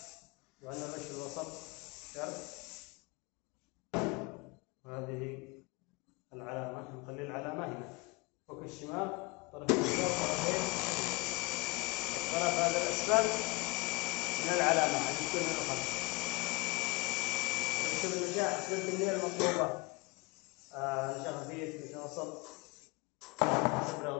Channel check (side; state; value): right; quieter; 25.5 dB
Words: وعندنا الرش في الوسط شرط. وهذه العلامة، نخلي العلامة هنا فوق الشمال، طرف اليسار طرفين، الطرف هذا الأسفل من العلامة عشان يكون الخط. نشوف النجاح نسبة الكمية المطلوبة، نشا خفيف نشا وسط حسب